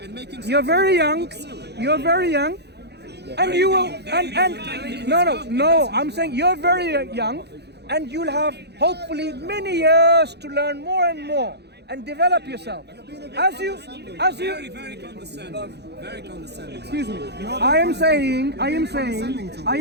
you're very young. And you will. No. I'm saying you're very young. And you'll have hopefully many years to learn more and more and develop yourself. As you Very condescending. Very condescending. Excuse me. I am saying.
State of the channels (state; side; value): late; left; 0.49 ms